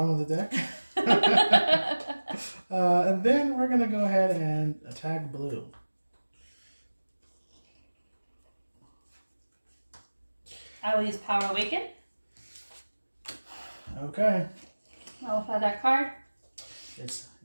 of the deck. And then we're going to go ahead and attack blue. I will use Power Awaken. Okay. I'll apply that card. It's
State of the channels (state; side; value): inverted; both; correlation -1.00